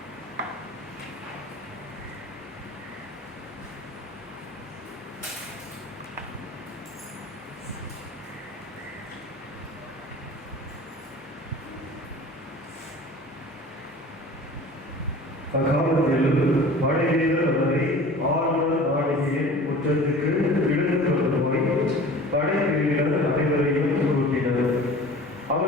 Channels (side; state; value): both; normal; correlation 0.42